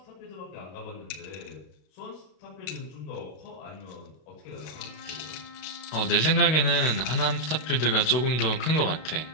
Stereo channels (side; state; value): right; late; 32 ms